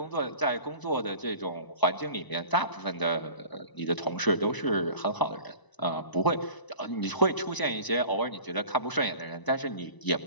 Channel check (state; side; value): late; right; 1.0 ms